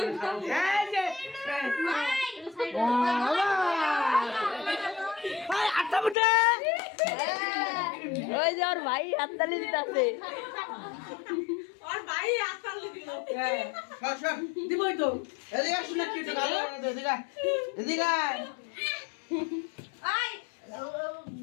এই যে ভাই আটা বুটে ওই যে ওর ভাই হাততালি দিতেছে আর ভাই আসল দিল সব দিবই তো এদিকে শুনে কি তো ভালো এদিকে আই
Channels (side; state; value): right; drops out; at 6.2 s